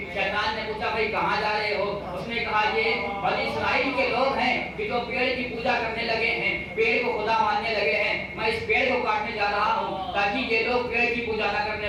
شیطان نے پوچھا بھائی کہاں جا رہے ہو؟ اس نے کہا یہ بنی اسرائیل کے لوگ ہیں کہ جو پیڑ کی پوجا کرنے لگے ہیں، پیڑ کو خدا ماننے لگے ہیں، میں اس پیڑ کو کاٹنے جا رہا ہوں تاکہ یہ لوگ پیڑ کی پوجا نہ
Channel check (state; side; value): identical; both; correlation 1.00